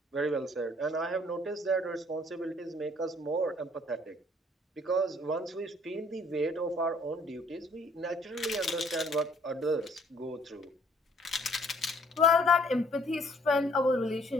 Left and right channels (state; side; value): normal; both; correlation 0.61